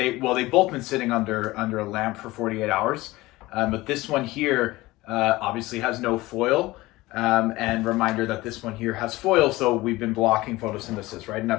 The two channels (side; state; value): right; quieter; 19.4 dB